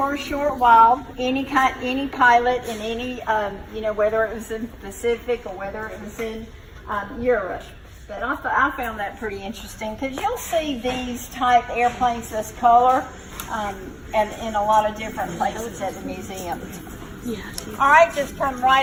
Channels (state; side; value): identical; both; correlation 1.00